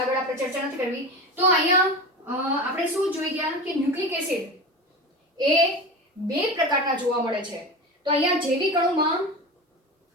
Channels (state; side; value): normal; both; correlation 0.27